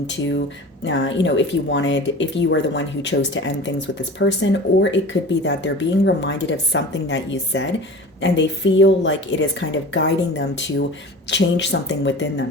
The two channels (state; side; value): normal; both; correlation 0.37